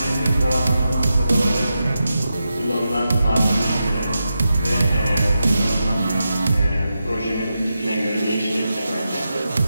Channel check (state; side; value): inverted; both; correlation -0.89